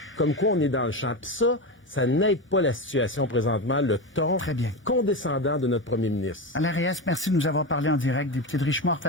comme quoi on est dans le champ. Puis ça n'aide pas la situation présentement, le ton condescendant de notre premier ministre. Alain Reyes, merci de nous avoir parlé en direct. Député de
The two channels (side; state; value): both; normal; correlation 0.18